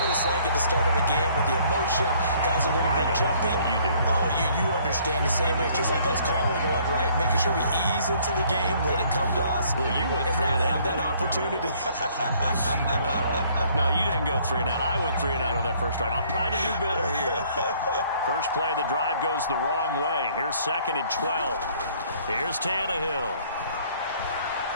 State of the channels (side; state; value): both; inverted; correlation -0.61